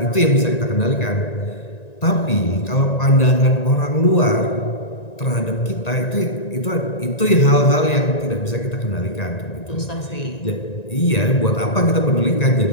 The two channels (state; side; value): late; right; 1.9 ms